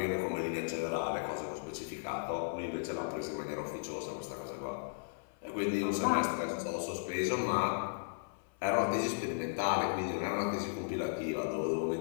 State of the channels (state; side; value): silent; right; 54 dB below the other